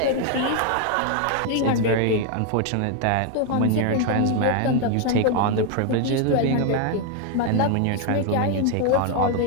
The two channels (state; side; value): different; both; correlation 0.01